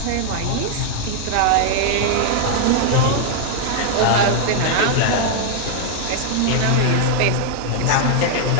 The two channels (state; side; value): different; both; correlation 0.00